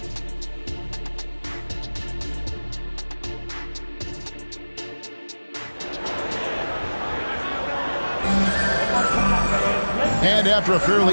And after a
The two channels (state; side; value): inverted; both; correlation -1.00